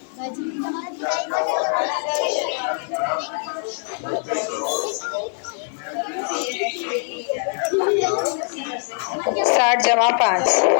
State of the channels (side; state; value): right; silent; digital silence